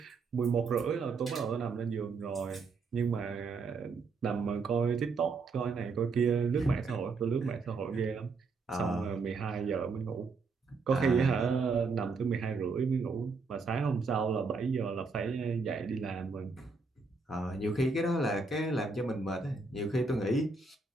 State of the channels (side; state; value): left; quieter; 4.3 dB